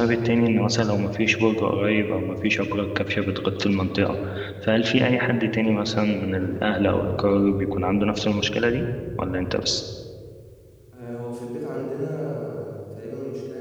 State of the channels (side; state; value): both; identical; correlation 1.00